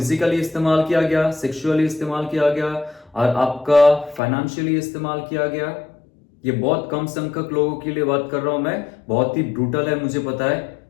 इस्तेमाल किया गया, सेक्सुअली इस्तेमाल किया गया, और आपका फाइनेंशियली इस्तेमाल किया गया। ये बहुत कम संख्यक लोगों के लिए बात कर रहा हूं मैं, बहुत ही ब्रूटल है, मुझे पता है।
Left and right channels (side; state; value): right; drops out; at 4.2 s